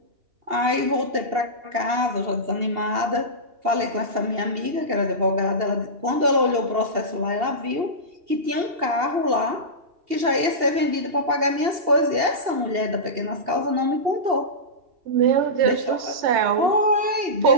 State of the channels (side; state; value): left; late; 2.8 ms